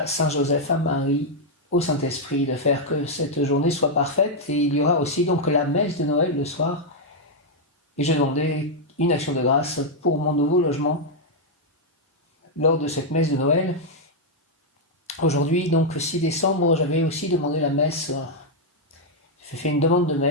Saint Joseph, à Marie, au Saint-Esprit, de faire que cette journée soit parfaite. Et il y aura aussi donc la messe de Noël le soir. Et je demandais une action de grâce pour mon nouveau logement lors de cette messe de Noël. Aujourd'hui, donc 6 décembre, j'avais aussi demandé la messe. J'ai fait une demande de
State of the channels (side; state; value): both; normal; correlation -0.02